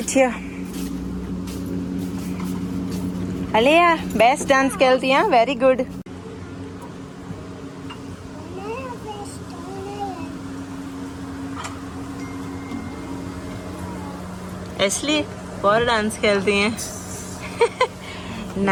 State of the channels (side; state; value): both; identical; correlation 1.00